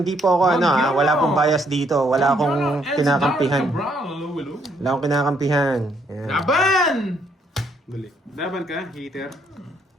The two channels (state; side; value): normal; both; correlation 0.70